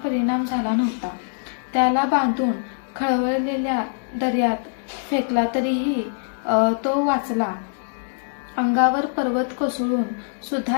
परिणाम झाला नव्हता. त्याला बांधून खळवळलेल्या दर्यात फेकला तरीही तो वाचला. अंगावर पर्वत कोसळून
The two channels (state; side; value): silent; right; digital silence